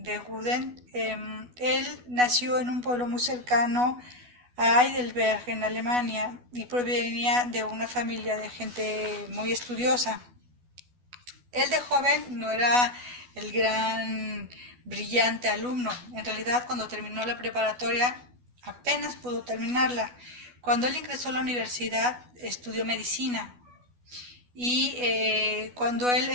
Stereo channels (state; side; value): late; left; 12 ms